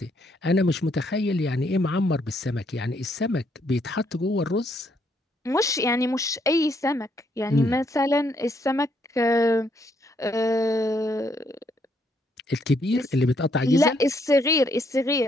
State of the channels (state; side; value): normal; both; correlation 0.72